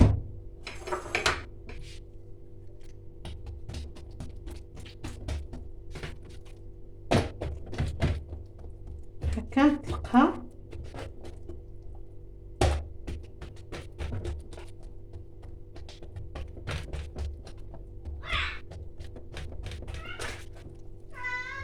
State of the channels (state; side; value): identical; both; correlation 1.00